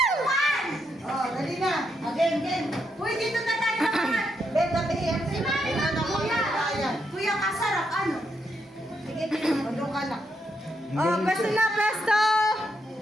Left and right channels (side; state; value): both; normal; correlation 0.79